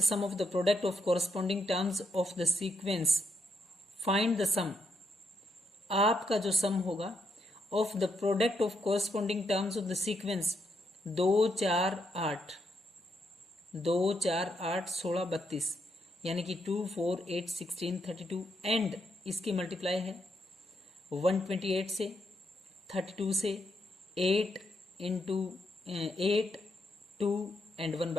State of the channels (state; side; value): normal; both; correlation 0.79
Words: sum of the product of corresponding terms of the sequence. Find the sum, आपका जो सम होगा of the product of corresponding terms of the sequence 2 4 8 2 4 8 16 32, यानी कि 2 4 8 16 32 एंड इसकी मल्टीप्लाई है 128 से 32 से 8 इंटू 8 2 एंड